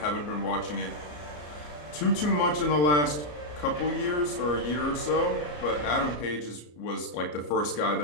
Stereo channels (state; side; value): late; right; 34 ms